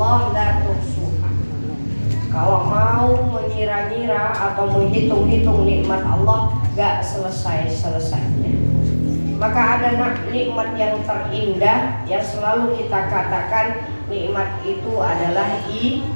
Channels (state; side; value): inverted; both; correlation -1.00